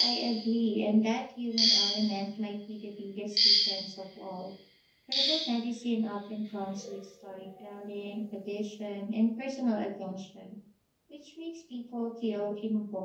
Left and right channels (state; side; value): identical; both; correlation 1.00